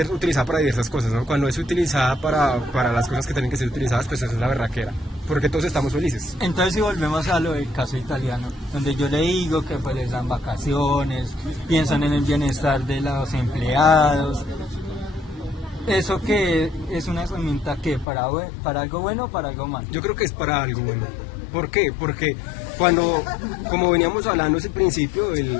utilizada para diversas cosas, ¿no? Cuando es utilizada para las cosas que tienen que ser utilizadas, pues eso es la berraquera, porque todos estamos felices. Entonces si volvemos a lo del caso italiano, donde yo le digo que pues les dan vacaciones, piensan en el bienestar de los empleados, eso que es una herramienta que para algo bueno o para algo malo. Yo creo que es para algo bueno. ¿Por qué? Porque como veníamos hablando desde el principio,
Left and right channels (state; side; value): drops out; right; at 18.1 s